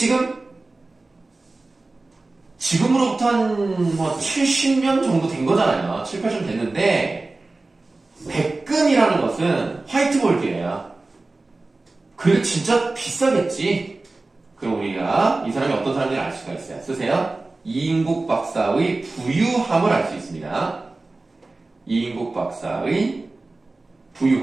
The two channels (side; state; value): left; quieter; 3.3 dB